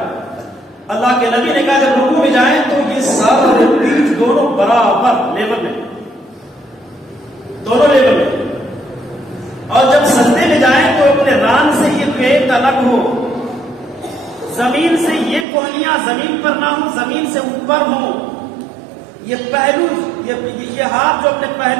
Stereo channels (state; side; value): drops out; left; at 15.5 s